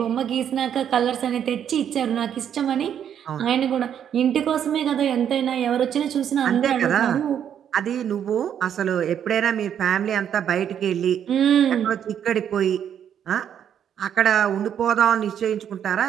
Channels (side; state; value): left; quieter; 9.1 dB